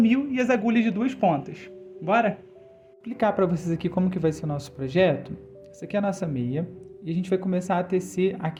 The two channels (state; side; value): identical; both; correlation 1.00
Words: e as agulhas de 2 pontas. Bora? Vou explicar para vocês aqui como que vai ser o nosso projeto. Essa aqui é a nossa meia e a gente vai começar a tecer